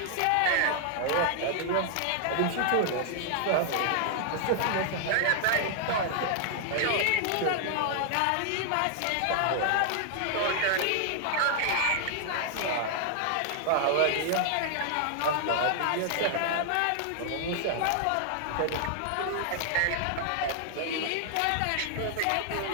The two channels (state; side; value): different; both; correlation 0.00